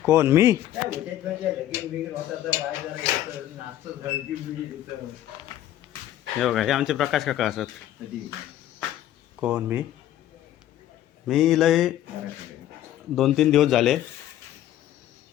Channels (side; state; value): right; quieter; 12.7 dB